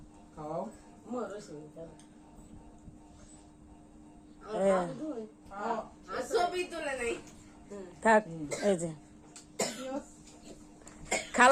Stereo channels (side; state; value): both; identical; correlation 1.00